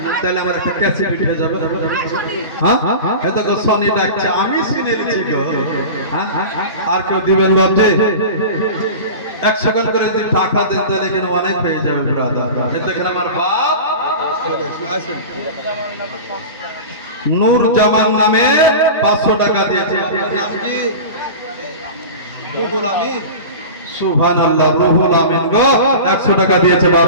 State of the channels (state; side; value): inverted; both; correlation -0.31